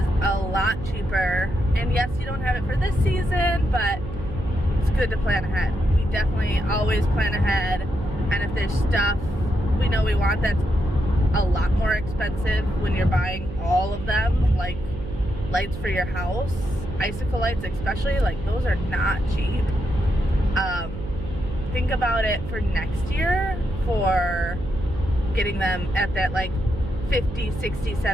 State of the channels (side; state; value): right; noise; hum, 10 dB below the sound